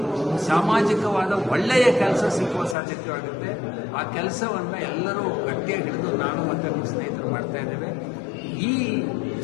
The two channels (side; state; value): right; drops out; at 2.8 s